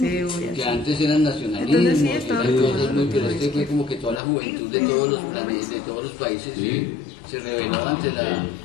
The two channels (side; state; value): right; drops out; at 4.2 s